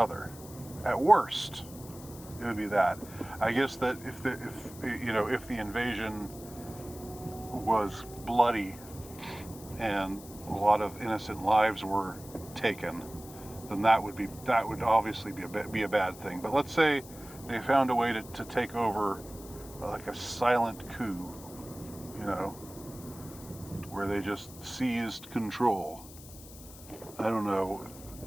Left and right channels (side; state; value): left; noise; hiss, 18 dB below the sound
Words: At worst, it would be that. I guess that if the invasion was bloody and a lot of innocent lives were taken, then that would obviously be a bad thing. But let's say they found a way to take over, like a silent coup, where they just seized control. I don't know,